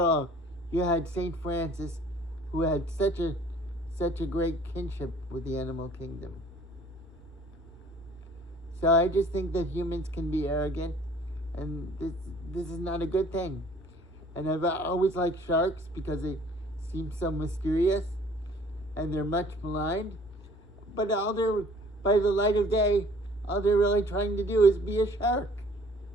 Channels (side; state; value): both; normal; correlation 0.54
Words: you had Saint Francis, who had such a great kinship with the animal kingdom. So I just think that humans can be arrogant, and this is not a good thing. And I've always liked sharks because they seem so mysterious, and they're much maligned. But by the light of day, all they're really trying to do is be a shark.